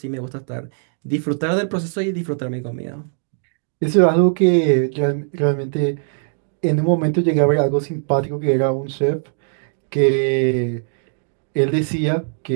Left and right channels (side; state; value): left; silent; digital silence